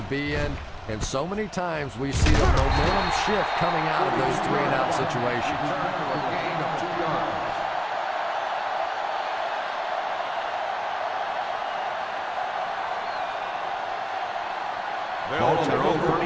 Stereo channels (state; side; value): identical; both; correlation 1.00